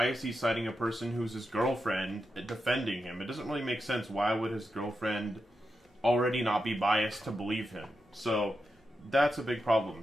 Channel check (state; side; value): normal; both; correlation 0.88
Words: is he citing a person who's his girlfriend defending him? It doesn't really make sense. Why would his girlfriend already not be biased to believe him? So that's a big problem.